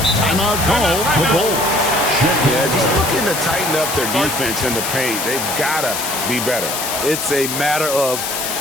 Timeout call, the Bulls. Yeah, just looking to tighten up their defense in the paint. They've got to be better. It's a matter of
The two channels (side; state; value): left; noise; hiss, 4 dB below the sound